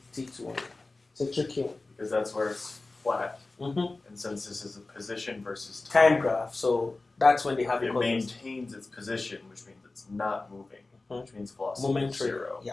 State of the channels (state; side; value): quieter; right; 3.3 dB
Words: T2. It's a tricky one. Because that's where it's flat. Mm-hmm. And since this is a position versus Time graph. So that's when they have it equal velocity. maintains its position, which means it's not moving, Mhm. which means velocity Momentary. is 0. Yeah.